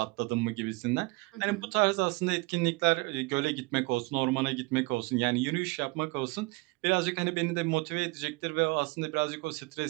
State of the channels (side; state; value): left; quieter; 26.2 dB